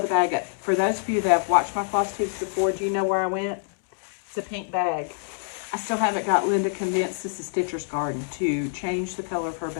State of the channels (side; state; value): right; silent; digital silence